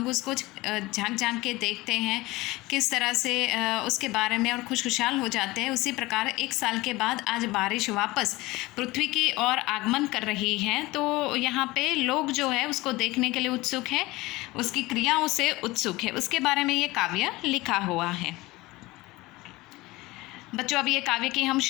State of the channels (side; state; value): right; quieter; 20.5 dB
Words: उसको झांक झांक के देखते हैं किस तरह से उसके बारे में, और खुशखुशाल हो जाते हैं। उसी प्रकार 1 साल के बाद आज बारिश वापस पृथ्वी की ओर आगमन कर रही है, तो यहाँ पे लोग जो है उसको देखने के लिए उत्सुक है, उसकी क्रियाओं से उत्सुक है। उसके बारे में ये काव्य लिखा हुआ है। बच्चों, अब ये काव्य की हम